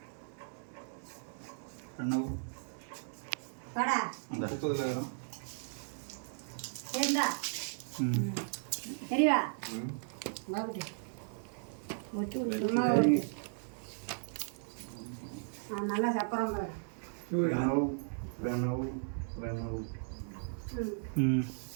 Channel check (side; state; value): left; silent; digital silence